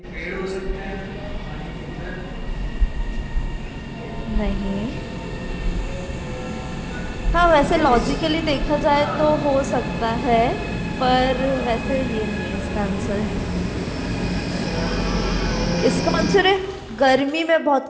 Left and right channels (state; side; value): identical; both; correlation 1.00